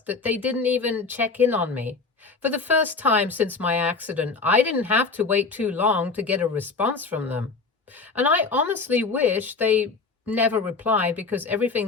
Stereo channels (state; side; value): quieter; right; 4.3 dB